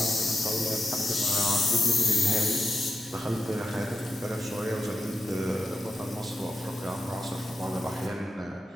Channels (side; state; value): both; normal; correlation 0.88